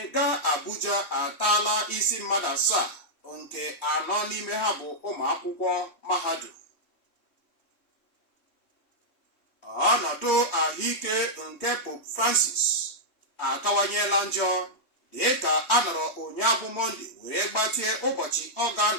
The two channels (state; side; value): late; right; 3.2 ms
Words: gaa Abuja ataala isi mmadụ 7 nke 4 n'ime ha bụ ụmụ akwụkwọ mahadum. Ọnọdụ ahụike nke Pope Francis akawanyela njọ dịka a nọrọ ụnyaahụ Mọnde wee gbatie ụbọchị ọ